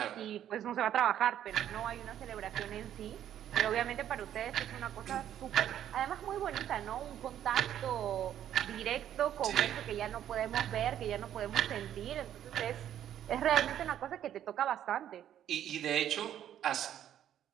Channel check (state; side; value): quieter; left; 10.8 dB